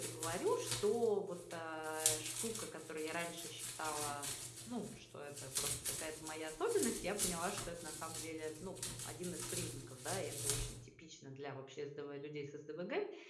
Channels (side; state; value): both; identical; correlation 1.00